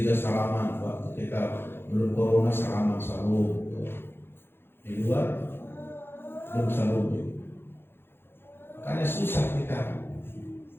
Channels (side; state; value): right; late; 0.11 ms